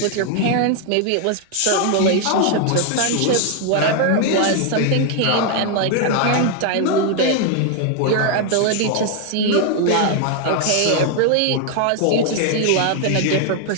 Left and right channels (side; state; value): both; different; correlation 0.00